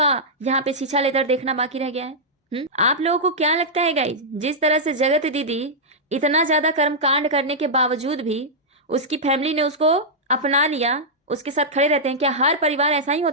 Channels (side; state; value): both; normal; correlation -0.09